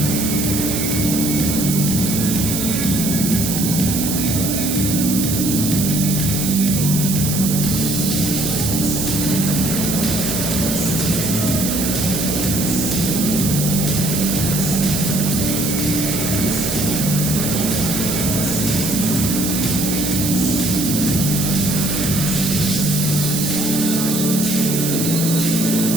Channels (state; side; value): noise; right; hiss, 2 dB below the sound